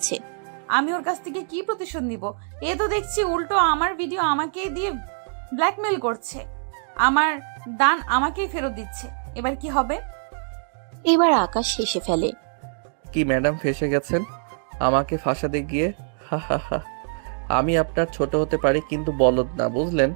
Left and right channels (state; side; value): silent; left; digital silence